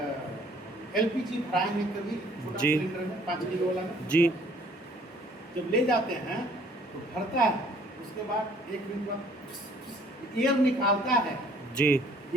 LPG भराएंगे कभी छोटा जी। सिलेंडर में 5 किलो वाला में जी। जब ले जाते हैं तो भरता है, उसके बाद 1 मिनट बाद एयर निकालता है जी।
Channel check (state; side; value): normal; both; correlation 0.58